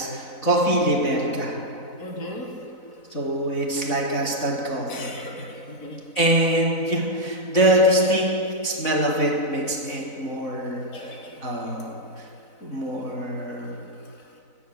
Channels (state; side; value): late; right; 4.0 ms